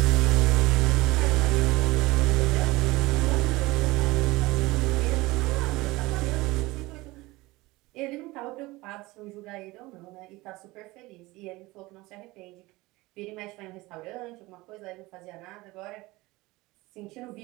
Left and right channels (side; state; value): left; quieter; 20.9 dB